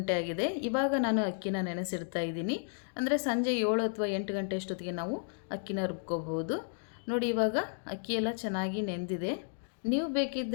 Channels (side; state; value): right; silent; digital silence